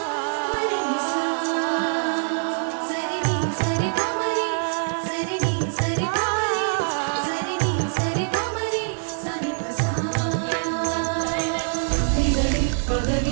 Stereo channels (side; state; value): left; silent; digital silence